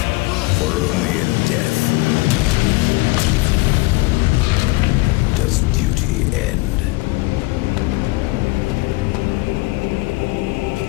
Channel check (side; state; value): right; quieter; 22.9 dB